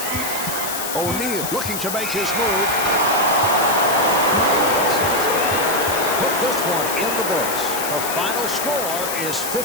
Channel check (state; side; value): noise; left; hiss, 5 dB below the sound